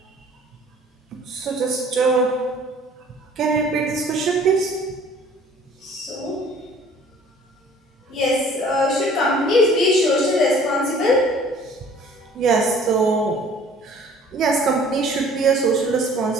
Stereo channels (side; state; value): both; normal; correlation 0.52